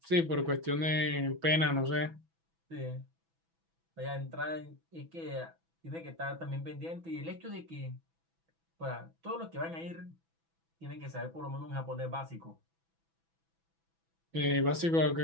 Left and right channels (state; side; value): late; left; 6.1 ms